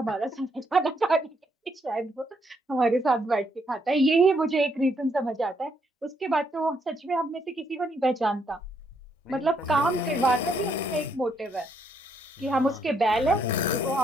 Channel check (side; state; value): both; normal; correlation 0.74